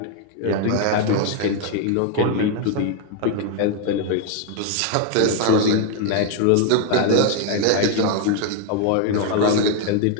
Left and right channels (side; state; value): both; different; correlation 0.01